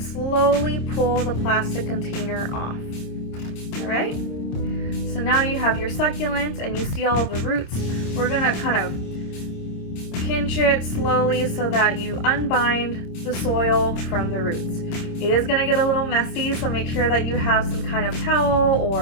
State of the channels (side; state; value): right; late; 26 ms